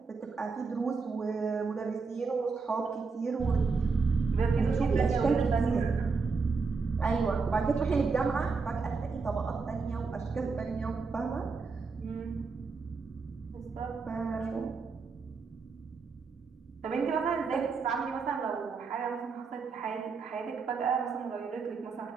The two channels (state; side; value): quieter; left; 4.7 dB